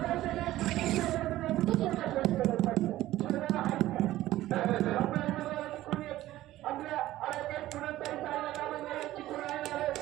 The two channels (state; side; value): quieter; left; 15.2 dB